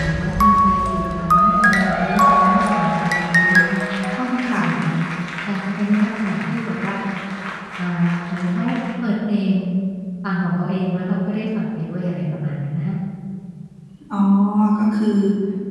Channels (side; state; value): both; identical; correlation 1.00